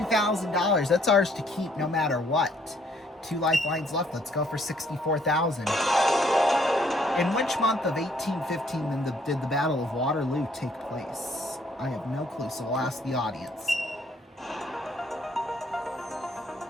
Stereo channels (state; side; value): normal; both; correlation 0.65